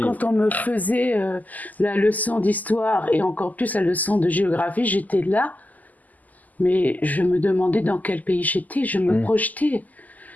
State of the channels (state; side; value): late; right; 0.080 ms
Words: quand on me faisait la leçon d'histoire et encore plus la leçon de géographie, j'étais là, mais je me demandais dans quel pays j'étais, je me projetais.